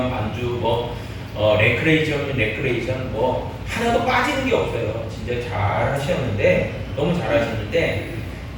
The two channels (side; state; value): both; identical; correlation 1.00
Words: 반주, 뭐 레크레이션이면 레크레이션, 뭐 하나도 빠지는 게 없어요. 진짜 잘 하셨는데 너무 잘 하셨는데